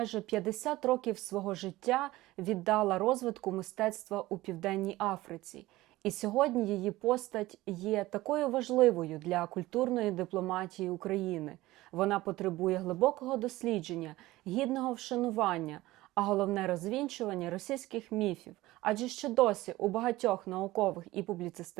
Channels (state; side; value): quieter; left; 18.0 dB